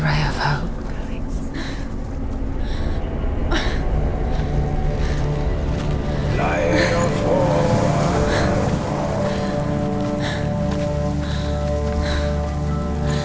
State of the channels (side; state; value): both; identical; correlation 1.00